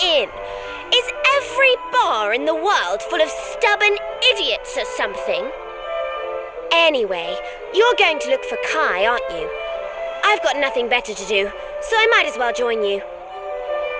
in. Is every bar in the world full of stubborn idiots or something? Anyway, you're going to look for Kai, aren't you? I've got nothing better to do, so I might as well join you.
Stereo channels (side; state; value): both; identical; correlation 1.00